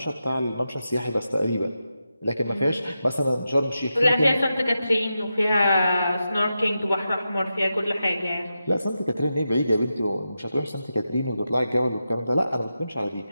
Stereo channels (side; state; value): both; inverted; correlation -0.89